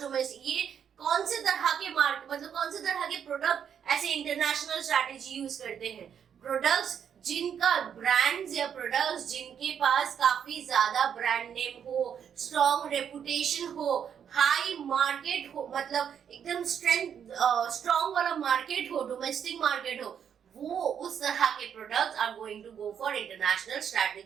domestic, ये कौन से तरह के मार्केट, मतलब कौन से तरह के प्रोडक्ट ऐसे इंटरनेशनल स्ट्रैटेजी यूज करते हैं? प्रोडक्ट्स जिनका ब्रांड्स या प्रोडक्ट्स जिनके पास काफी ज्यादा ब्रांड नेम हो, स्ट्रॉन्ग रेपुटेशन हो, हाई मार्केट हो, मतलब एकदम स्ट्रॉन्ग वाला मार्केट हो, डोमेस्टिक मार्केट हो, वो उस तरह के products are going to go for international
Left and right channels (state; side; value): quieter; left; 8.2 dB